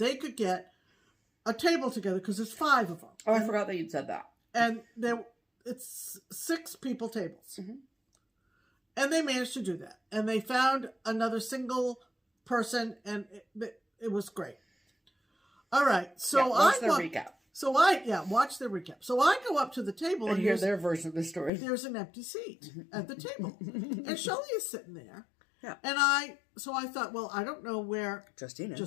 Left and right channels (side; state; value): right; drops out; at 21.5 s